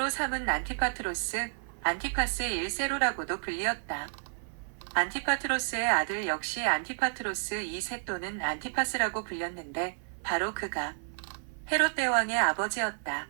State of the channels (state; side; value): silent; left; 55 dB below the other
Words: 삼은 안티파트로스, 안티파스 1세로라고도 불리었다. 안티파트로스의 아들 역시 안티파트로스 2세 또는 안티파스라고 불렸는데 바로 그가 헤롯 대왕의 아버지였다.